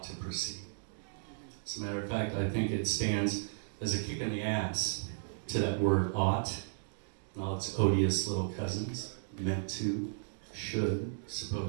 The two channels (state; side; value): silent; left; digital silence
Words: to proceed. As a matter of fact, I think it stands as a kick in the ass to that word ought and all its odious little cousins, meant to, should,